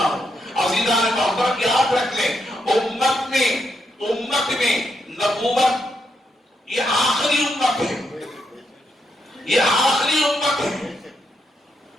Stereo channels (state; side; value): normal; both; correlation 0.80